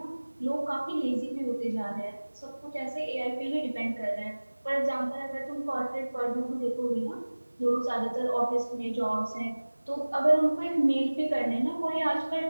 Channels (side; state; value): both; inverted; correlation -1.00